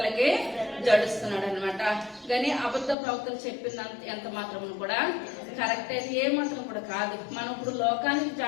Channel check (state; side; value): drops out; right; at 3.0 s